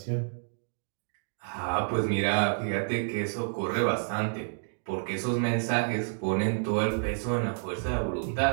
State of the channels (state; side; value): silent; left; digital silence